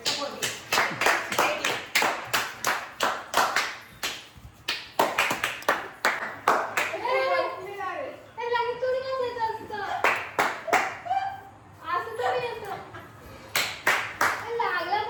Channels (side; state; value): both; identical; correlation 1.00